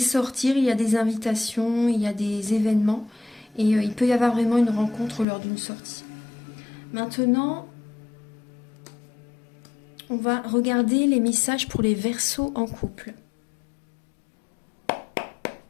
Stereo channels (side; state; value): right; drops out; at 5.2 s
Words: il y a des invitations, il y a des événements, et il peut y avoir vraiment une rencontre lors d'une sortie. Maintenant, on va regarder les messages pour les Verseaux en couple.